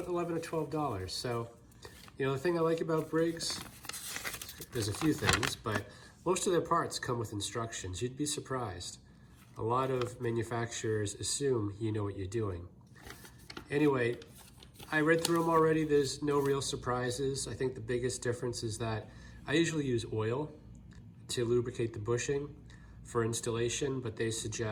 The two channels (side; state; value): both; identical; correlation 1.00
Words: $11 or $12. So, you know, the thing I like about Briggs, there's a few things, but most of their parts come with instructions. You'd be surprised. A lot of manufacturers assume you know what you're doing. Anyway, I read through them already. There's no real surprises. I think the biggest difference is that I usually use oil to lubricate the bushing for installation, but they